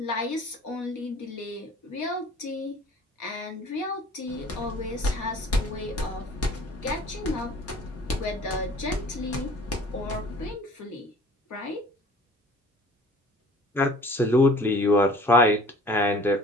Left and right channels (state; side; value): normal; both; correlation 0.49